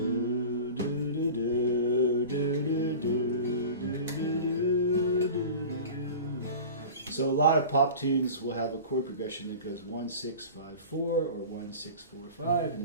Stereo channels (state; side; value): inverted; both; correlation -0.36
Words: So a lot of pop tunes will have a chord progression that goes 1 6 5 4 or 1 6 4 5, and